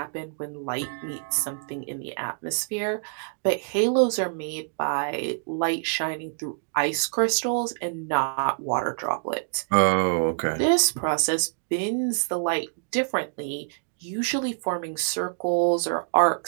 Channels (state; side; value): silent; left; digital silence